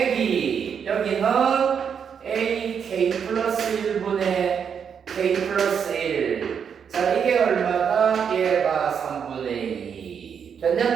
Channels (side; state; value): left; quieter; 7.2 dB